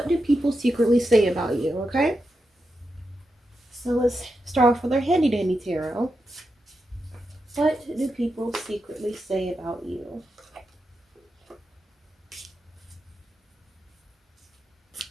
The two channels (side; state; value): both; normal; correlation 0.87